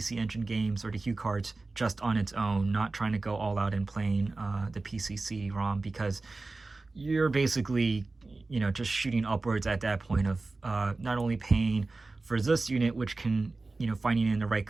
Engine games or the Hue cards just on its own, not trying to go all out and playing the PC CD-ROM, because you're basically, just shooting upwards at that point of not only paying for this unit, which can, finding it in the right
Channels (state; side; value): quieter; left; 3.5 dB